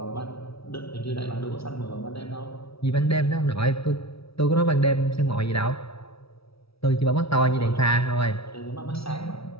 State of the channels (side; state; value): right; late; 0.76 ms